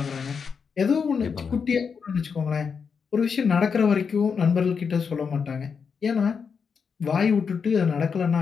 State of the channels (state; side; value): quieter; right; 6.0 dB